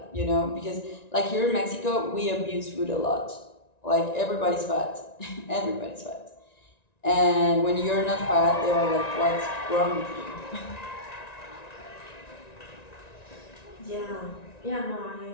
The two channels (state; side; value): late; right; 1.9 ms